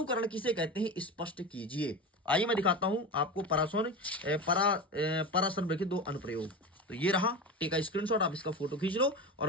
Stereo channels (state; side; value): normal; both; correlation 0.25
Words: किसे कहते हैं, स्पष्ट कीजिए। आइए मैं दिखाता हूं आपको पराशब्द के 2 अनुप्रयोग। तो ये रहा, टेक अ स्क्रीनशॉट, आप इसका फोटो खींच लो